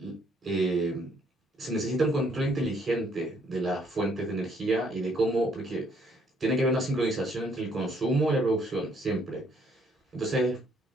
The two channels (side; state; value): both; normal; correlation 0.66